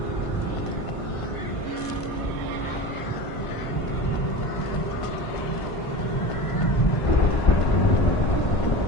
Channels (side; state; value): right; late; 1.5 ms